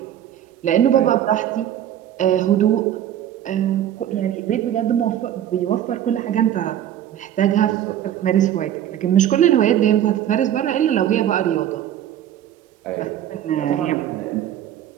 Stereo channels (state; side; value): quieter; left; 11.0 dB